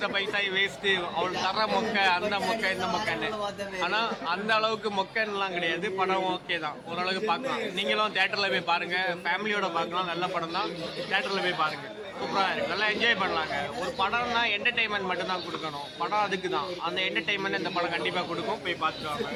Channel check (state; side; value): identical; both; correlation 1.00